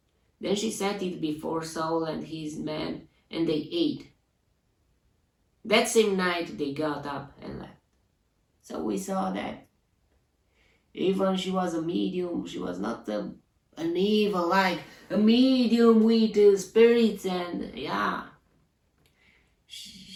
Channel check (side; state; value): both; identical; correlation 1.00